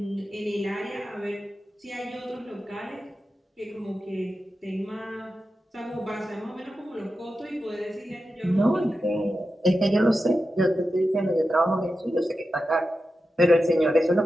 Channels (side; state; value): both; normal; correlation 0.91